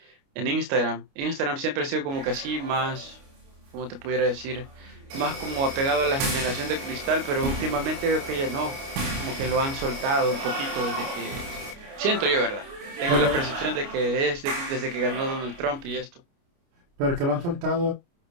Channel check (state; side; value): late; left; 29 ms